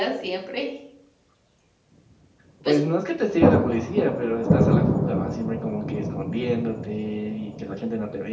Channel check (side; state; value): both; identical; correlation 1.00